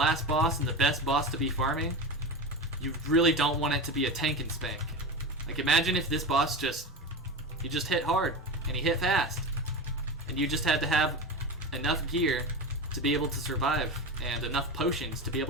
boss and the best boss to be farming, you really don't want it to be a tank and spank. Like, imagine if this boss he just hit hard and he hit fast, and you just had to have enough gear to be able to survive and enough potions to be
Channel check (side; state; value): both; normal; correlation 0.24